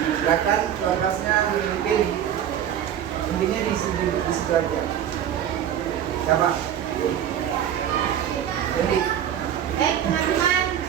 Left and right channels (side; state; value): left; quieter; 9.9 dB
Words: silakan kelasnya memimpin. Intinya di situ aja. Siapa? Jadi, baik teman-teman,